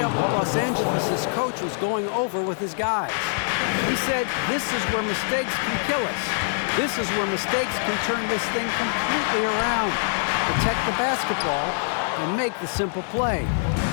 what Los Angeles' coach was going over with his guys. He said, this is where mistakes can kill us. This is where mistakes can turn this thing completely around. Protect the basketball and make the simple play.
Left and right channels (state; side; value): silent; right; 60 dB below the other